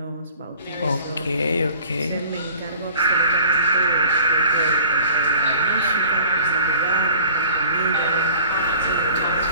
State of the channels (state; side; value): inverted; both; correlation -0.47